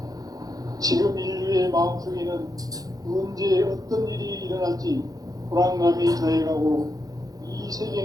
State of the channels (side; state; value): left; late; 0.18 ms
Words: 지금 인류의 마음속에는 언제 어떤 일이 일어날지 불안감이 더해가고 이